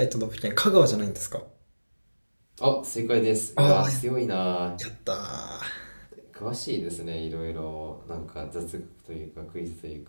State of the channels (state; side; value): inverted; both; correlation -1.00